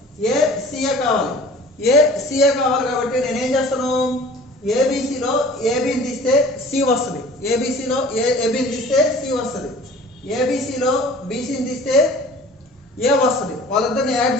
ఏ సిఏ కావాలి కాబట్టి నేను ఏం చేస్తాను? ఏబిసిలో ఏబిని తీస్తే సి వస్తుంది. ఏబిసిలో ఏబిని తీస్తే సి వస్తుంది. ఏబిసిలో బీసీని తీస్తే ఏ వస్తుంది. వాళ్ళిద్దరిని యాడ్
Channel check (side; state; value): both; normal; correlation 0.46